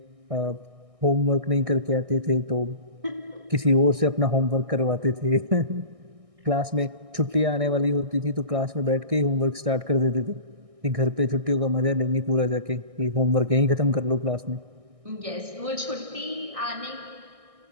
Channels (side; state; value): left; late; 1.6 ms